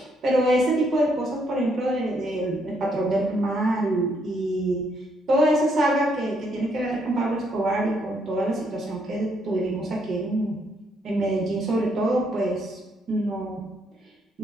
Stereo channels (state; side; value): normal; both; correlation 0.73